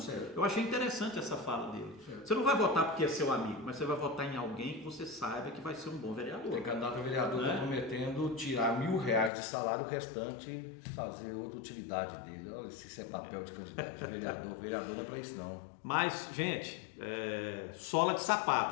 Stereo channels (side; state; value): right; drops out; at 9.3 s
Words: Eu achei interessante essa fala dele. Você não vai votar porque é seu amigo, mas você vai votar em alguém que você saiba que vai ser um bom vereador. Tem candidato a vereador que está prometendo tirar R$1.000 de salário, o restante fazer outra utilidade dele. Olha, se isso é papel de candidato de vereador, vereador não é para isso não. Mas, gente, sola de